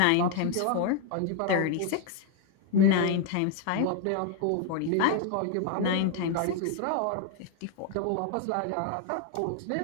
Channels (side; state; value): both; different; correlation 0.00